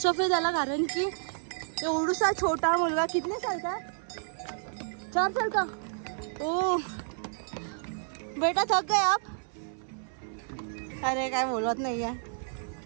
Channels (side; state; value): left; silent; 58 dB below the other